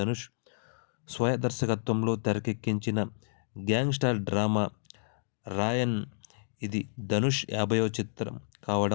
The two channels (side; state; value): right; silent; digital silence